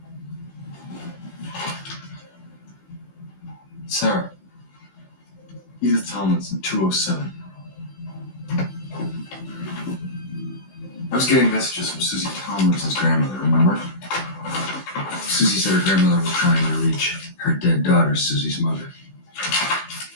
Sarah. Edith Tomlinson, 207. I was getting messages from Susie Tomlinson's grandmother, remember? Susie said her grandmother was trying to reach her dead daughter, Susie's mother.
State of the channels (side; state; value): right; late; 16 ms